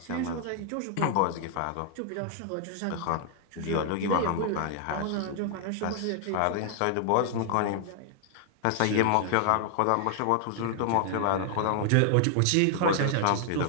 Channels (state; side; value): different; both; correlation 0.00